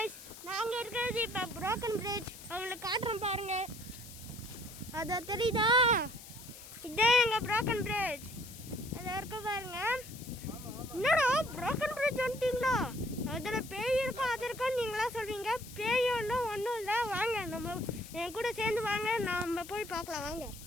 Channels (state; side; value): noise; left; hiss, 16 dB below the sound